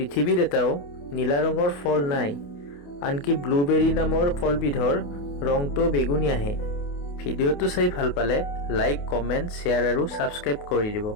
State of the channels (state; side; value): late; right; 28 ms